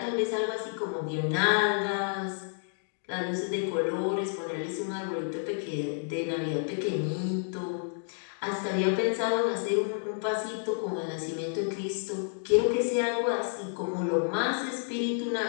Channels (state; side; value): silent; right; digital silence